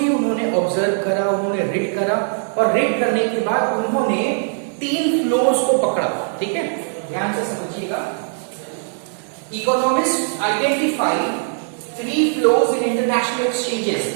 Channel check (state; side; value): silent; left; 62 dB below the other